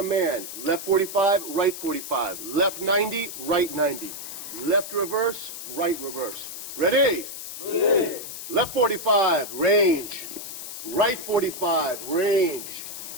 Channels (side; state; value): left; noise; hiss, 9 dB below the sound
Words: left 45, right 45. Left 90, right 90. Left reverse, right reverse. Ready? Ready. Left 45, range. Right 45, range.